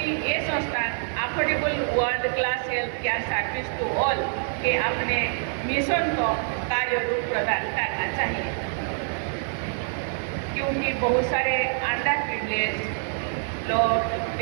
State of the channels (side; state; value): left; silent; 57 dB below the other